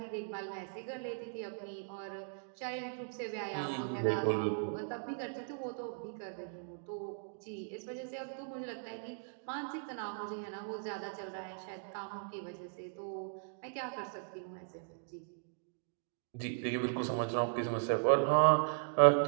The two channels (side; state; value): left; silent; digital silence